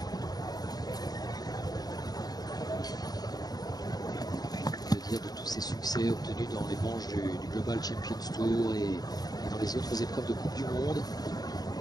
Que dire de tous ces succès obtenus dans les manches du Global Champions Tour et dans les autres épreuves de Coupe du Monde.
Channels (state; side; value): late; right; 0.19 ms